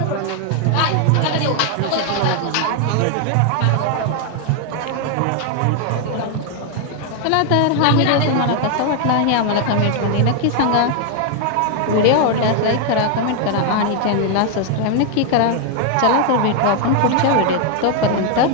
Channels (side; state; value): both; different; correlation 0.00